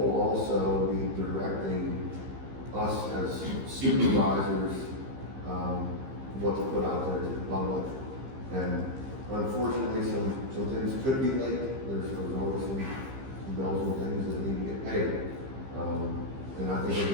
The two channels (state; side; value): late; left; 15 ms